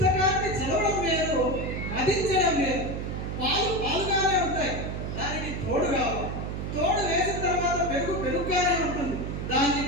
చదవడం వేరు, మదించడం వేరు. పాలుగానే ఉంటాయి, దానికి తోడు కావాలి. తోడు వేసిన తర్వాత పెరుగుగానే ఉంటుంది, దాన్ని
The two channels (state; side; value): noise; right; hum, 4 dB below the sound